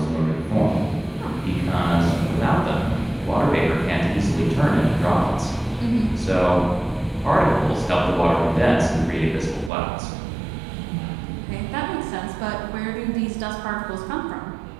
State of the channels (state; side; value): drops out; left; at 9.7 s